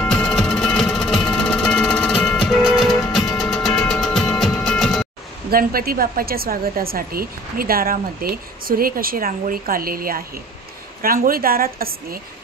गणपती बाप्पाच्या स्वागतासाठी मी दारामध्ये सुरेख अशी रांगोळी काढलेली आहे। रांगोळी दारात असणे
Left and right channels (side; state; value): both; normal; correlation 0.51